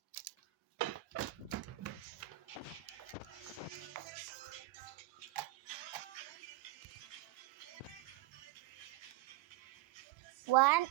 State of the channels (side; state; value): left; quieter; 16.3 dB